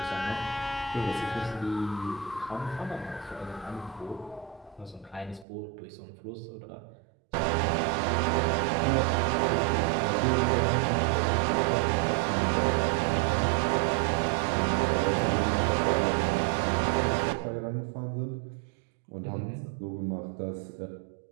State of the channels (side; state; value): left; drops out; at 5.5 s